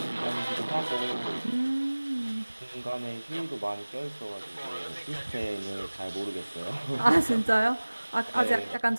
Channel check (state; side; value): inverted; both; correlation -1.00